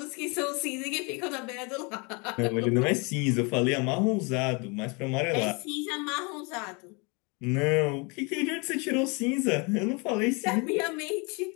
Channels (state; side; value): quieter; right; 30.5 dB